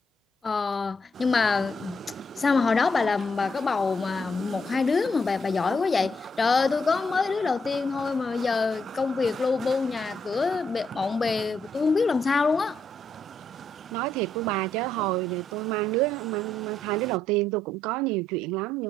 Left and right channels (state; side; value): normal; both; correlation 0.76